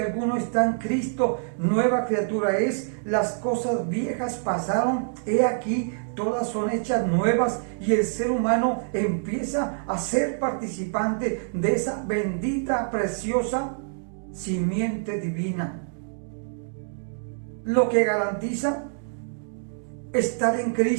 está en Cristo, nueva criatura es, las cosas viejas pasaron, he aquí, todas son hechas nuevas, y el ser humano empieza a ser participante de esa bendita, preciosa simiente divina. Lo que garantiza estar en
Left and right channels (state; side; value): silent; left; digital silence